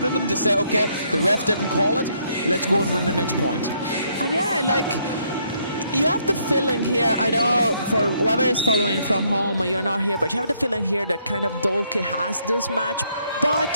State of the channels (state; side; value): inverted; both; correlation -0.71